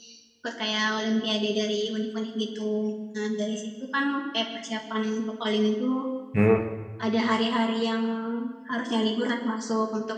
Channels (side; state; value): both; identical; correlation 1.00